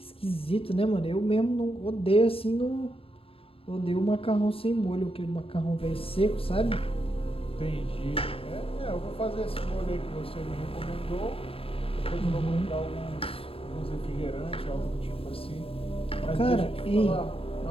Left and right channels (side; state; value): right; late; 0.27 ms